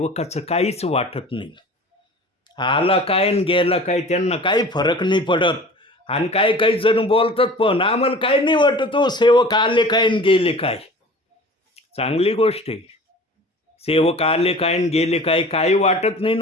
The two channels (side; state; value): both; normal; correlation 0.42